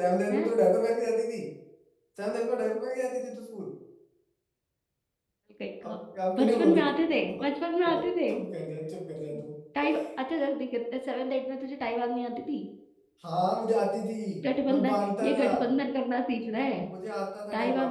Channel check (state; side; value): identical; both; correlation 1.00